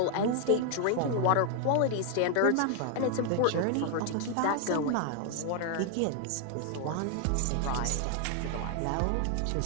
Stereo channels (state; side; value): different; both; correlation 0.00